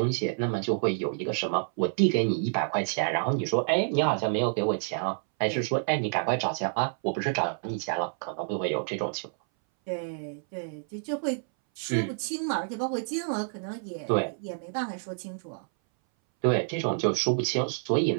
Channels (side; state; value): left; silent; 59 dB below the other